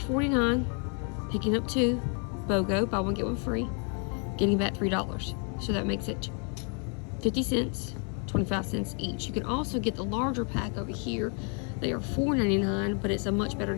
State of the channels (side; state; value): right; quieter; 39.5 dB